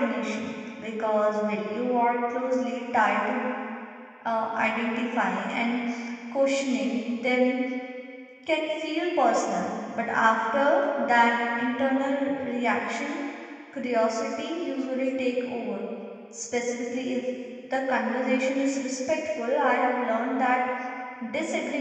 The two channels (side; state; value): both; identical; correlation 1.00